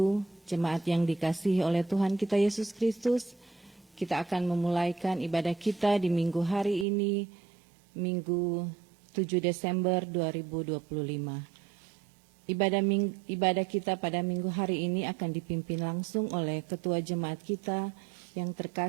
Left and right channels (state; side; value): drops out; left; at 6.9 s